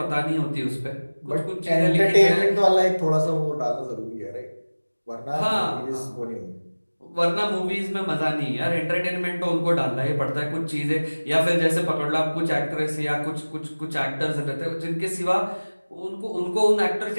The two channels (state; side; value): inverted; both; correlation -1.00